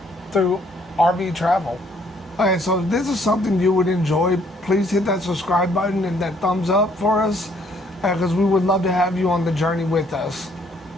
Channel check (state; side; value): normal; both; correlation 0.65